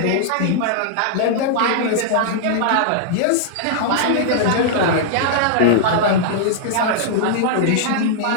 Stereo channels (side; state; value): both; different; correlation -0.01